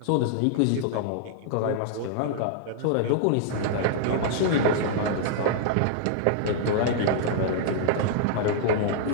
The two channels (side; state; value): both; different; correlation -0.01